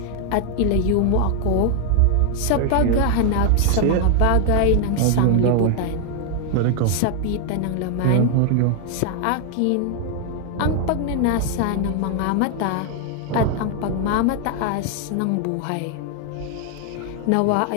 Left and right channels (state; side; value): different; both; correlation 0.00